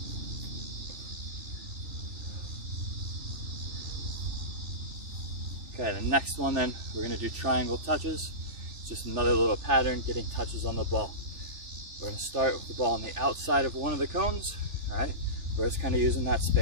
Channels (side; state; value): left; late; 3.4 ms